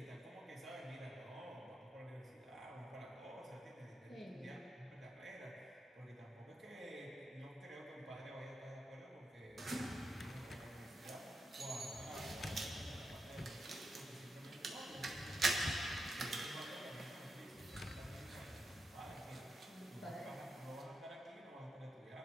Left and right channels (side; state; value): both; normal; correlation 0.85